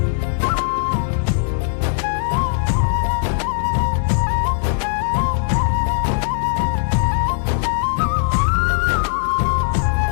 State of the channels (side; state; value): right; silent; digital silence